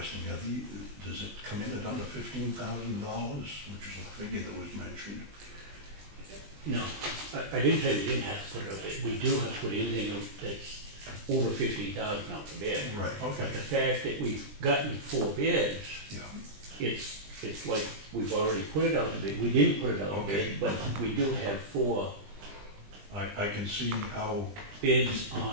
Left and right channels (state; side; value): late; left; 20 ms